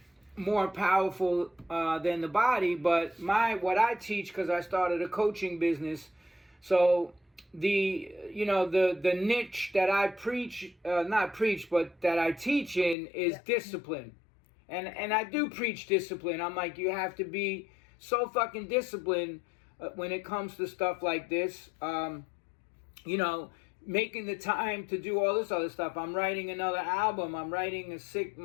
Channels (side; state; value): right; drops out; at 13.0 s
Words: more powerful than the body. But what I teach, because I started a coaching business, so the niche that I preach, not preach, but that I teach in is discipline. And I do preach discipline. I'm like, you have to be so fucking disciplined when it comes to stuff like this. Making the time to do all this other stuff. I'm writing another album. I'm writing